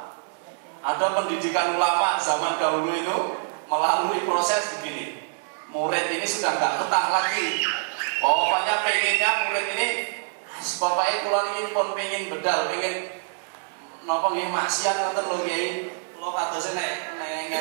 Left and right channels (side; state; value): left; silent; digital silence